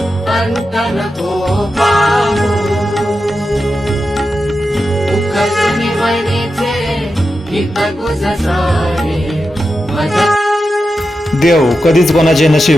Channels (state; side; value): normal; both; correlation 0.90